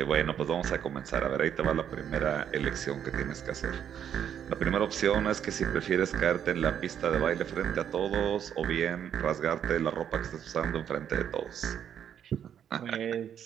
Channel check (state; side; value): quieter; left; 9.1 dB